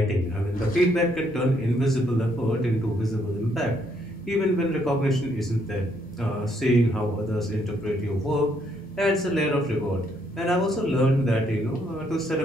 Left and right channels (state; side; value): normal; both; correlation 0.71